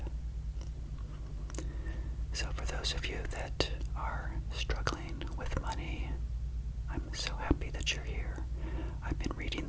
So for those of you that are struggling with money, I'm so happy that you're here. I've been reading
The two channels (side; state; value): both; identical; correlation 1.00